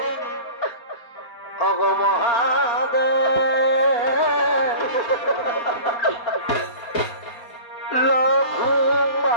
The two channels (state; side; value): late; right; 4.3 ms